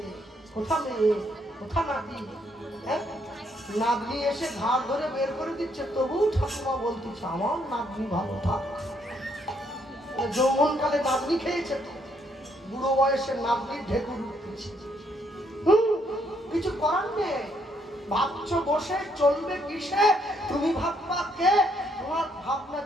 কোথা মেয়ে, কোথা নাতি। নাতনি এসে ঘাট ধরে বের করে দিচ্ছে, তবু ঠাকুমা বলতেছে আমার নাতনি ভালো থাক। যৌবনকালে নাতনি খেয়েছে, বুড়ো বয়সে নাতনির ঢেকুর উঠতেছে। কিছু করার নেই। ভাবছো বসে চলবে কিসে? তুমি ভাববা কে? তোমার ভাবনা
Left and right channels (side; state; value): both; normal; correlation 0.71